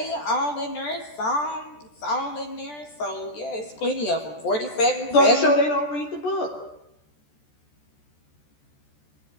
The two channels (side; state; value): right; late; 14 ms